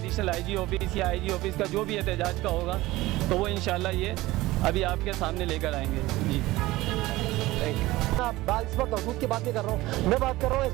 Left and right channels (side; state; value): left; quieter; 18.4 dB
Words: IG ऑफिस या IG ऑफिस का जो भी एहतजाज का होगा, तो वो इंशाल्लाह ये अभी आपके सामने लेकर आएंगे। जी इस वक्त हदूद की बात नहीं कर रहा हूँ, मैं बात कर रहा हूँ